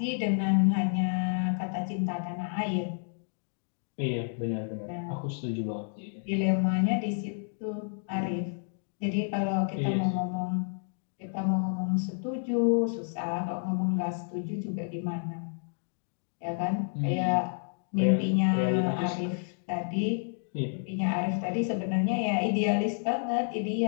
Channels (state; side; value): silent; right; digital silence